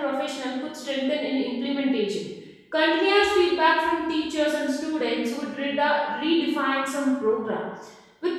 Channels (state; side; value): identical; both; correlation 1.00